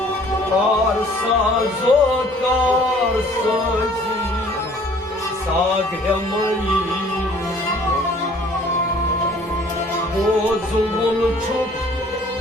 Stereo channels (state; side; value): normal; both; correlation 0.55